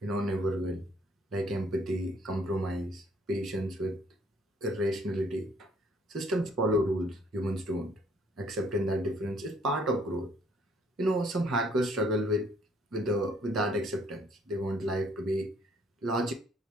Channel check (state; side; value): normal; both; correlation 0.63